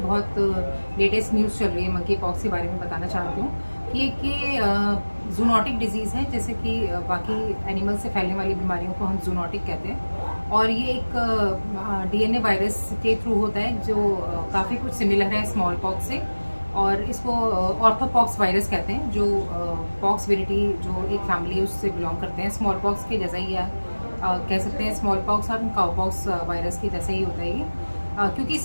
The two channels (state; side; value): inverted; both; correlation -1.00